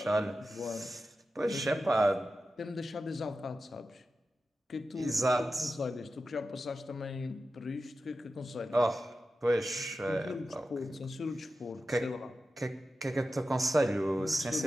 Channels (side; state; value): both; normal; correlation 0.92